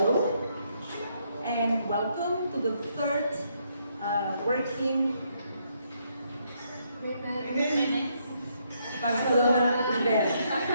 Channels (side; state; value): both; inverted; correlation -0.74